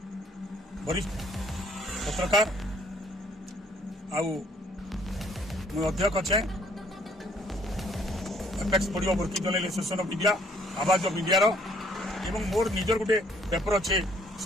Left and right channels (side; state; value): both; normal; correlation 0.63